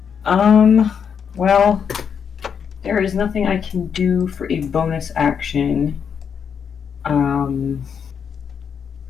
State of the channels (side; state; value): right; quieter; 7.2 dB